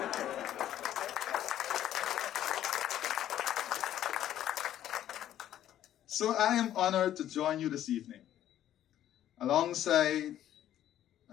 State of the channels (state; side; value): quieter; right; 11.8 dB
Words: So I am honored to join you this evening alongside